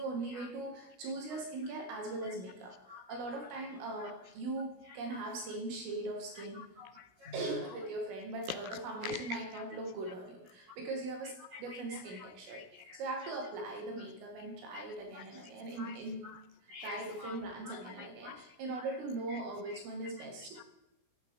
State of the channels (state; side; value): late; left; 16 ms